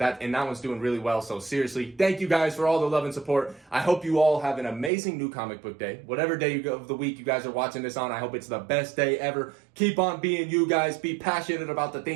one's doing really well. So seriously, thank you guys for all the love and support. I hope you all have an amazing new comic book day. Whatever day of the week you guys are watching this on, I hope it's the best day ever. Keep on being you guys. Be passionate about the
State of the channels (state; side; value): drops out; left; at 4.9 s